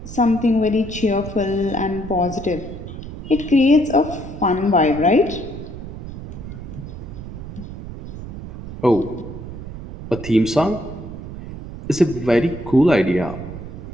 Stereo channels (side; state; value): right; noise; rumble, 11 dB below the sound